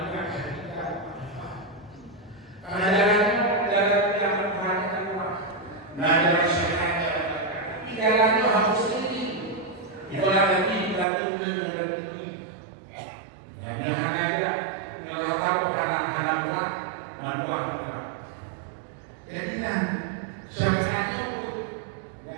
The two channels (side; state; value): left; drops out; at 11.1 s